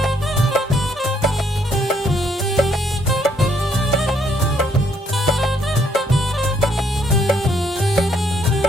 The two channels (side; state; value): both; normal; correlation 0.69